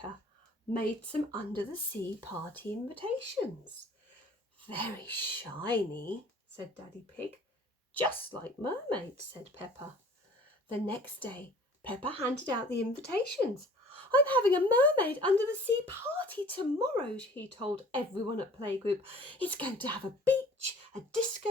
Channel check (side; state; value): both; normal; correlation 0.50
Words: made some under-the-sea party invitations. Very shiny, said Daddy Pig. Just like mermaids, said Peppa. The next day, Peppa handed out the invitations. I'm having a mermaid under-the-sea party tomorrow, he told everyone at playgroup. It's going to have a beach, a